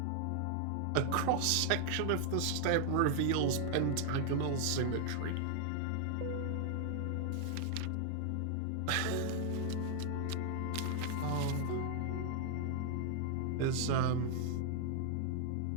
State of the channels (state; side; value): different; both; correlation 0.00